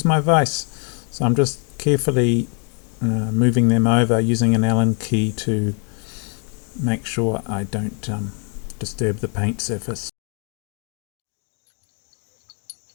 my vise, so I'm just carefully moving them over using an Allen key to make sure I don't disturb the paint surface.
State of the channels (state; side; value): quieter; right; 39.4 dB